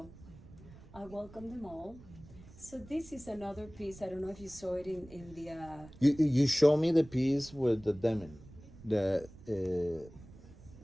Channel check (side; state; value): right; noise; rumble, 19 dB below the sound